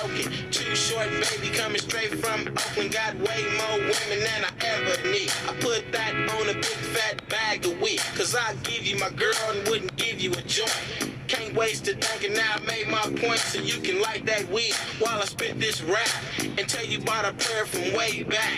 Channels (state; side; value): identical; both; correlation 1.00